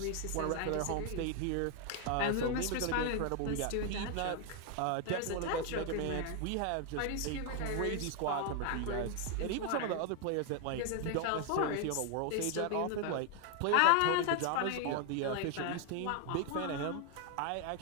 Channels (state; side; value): different; both; correlation 0.00